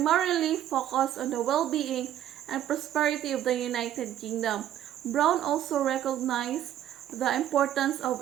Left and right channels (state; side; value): quieter; left; 11.5 dB